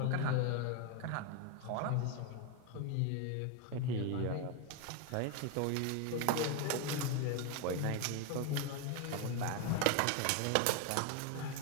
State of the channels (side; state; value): both; different; correlation 0.01